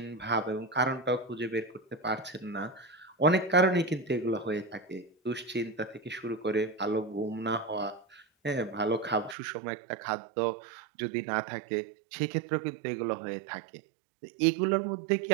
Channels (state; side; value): drops out; left; at 9.3 s